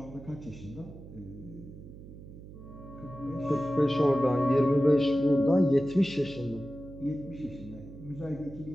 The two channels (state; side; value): noise; right; hum, 16 dB below the sound